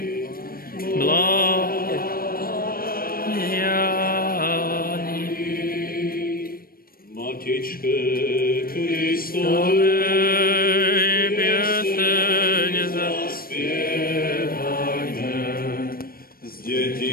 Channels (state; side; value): late; right; 0.43 ms